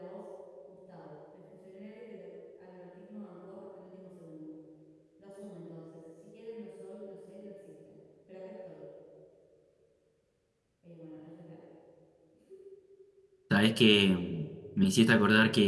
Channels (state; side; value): identical; both; correlation 1.00